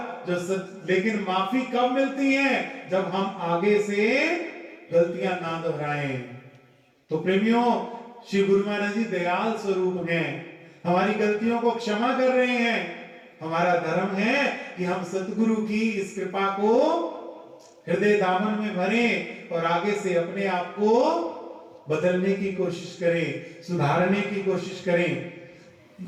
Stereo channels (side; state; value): both; identical; correlation 1.00